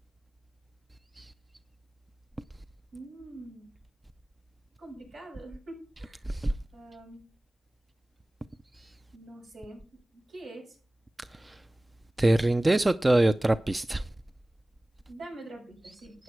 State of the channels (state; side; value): normal; both; correlation 0.98